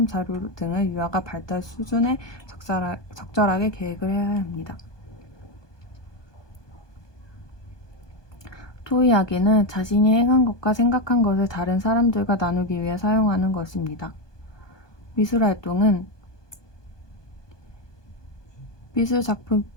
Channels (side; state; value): right; late; 1.2 ms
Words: 자료 등을 유아가 발달 수준에 적절하게 계획을 해야 합니다. 토의하기는 자신이 행한 것과 생각한 것을 다른 사람들과 나누기 위해 사용하는 것입니다. 미술활동은 미술 작품